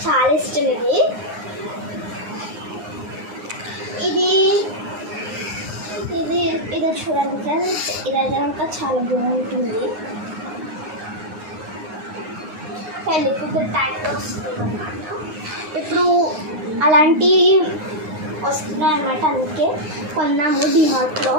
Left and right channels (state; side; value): late; left; 9.6 ms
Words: చాలా ఇష్టం ఇది. ఇది ఇది ఇది చూడండి ఫ్రెండ్స్, ఇదైతే కనుక చాలా బాగుంటుంది. పెళ్ళికి టైప్లో వస్తుంది అనమాట. ఇప్పుడు అలాంటి వస్తున్నాయి అన్నమాట, అందుకే కొన్నాము డిమార్ట్లో.